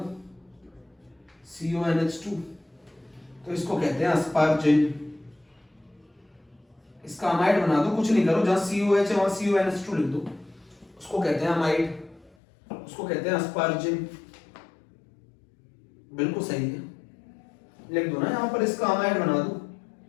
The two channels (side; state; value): right; drops out; at 12.4 s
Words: CONH2, तो इसको कहते हैं अस्पार्जिन। इसका अमाइड बना दो, कुछ नहीं करो, जहां COH है वहां CONH2 लिख दो, उसको कहते हैं अमाइड, उसको कहते हैं अस्पार्जिन। बिल्कुल सही है, लिख दो ना यहां पर, इसका अमाइड बना दो,